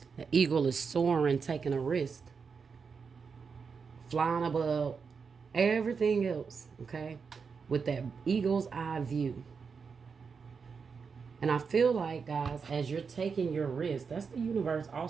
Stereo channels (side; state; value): left; quieter; 5.6 dB